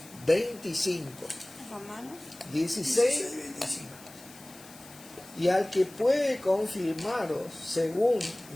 25. Romanos 16, 25. Y al que puede confirmaros según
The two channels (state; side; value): noise; left; hiss, 20 dB below the sound